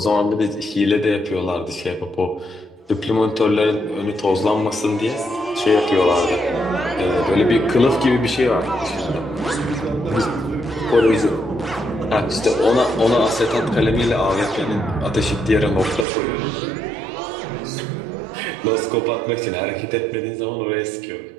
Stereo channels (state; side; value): drops out; left; at 16.1 s